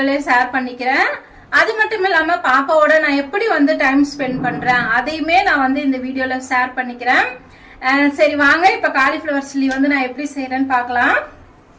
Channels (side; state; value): both; identical; correlation 1.00